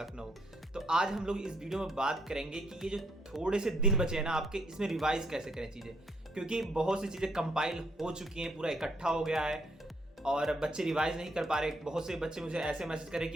तो आज हम लोग इस वीडियो में बात करेंगे कि ये जो थोड़े से दिन बचे हैं ना आपके, इसमें रिवाइज कैसे करें चीज़ें, क्योंकि बहुत सी चीज़ें कंपाइल हो चुकी हैं, पूरा इकट्ठा हो गया है और बच्चे रिवाइज नहीं कर पा रहे। बहुत से बच्चे मुझे ऐसे मैसेज करें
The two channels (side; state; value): both; normal; correlation 0.72